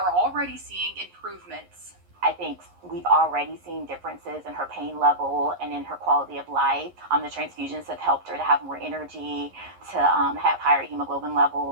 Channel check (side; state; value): left; late; 11 ms